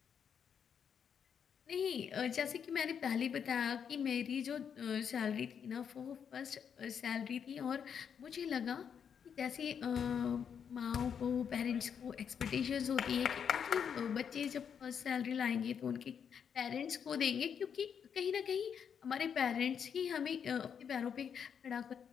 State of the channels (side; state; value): right; quieter; 7.5 dB